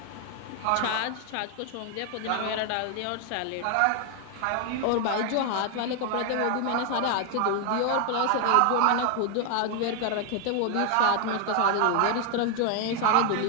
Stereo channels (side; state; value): both; different; correlation 0.00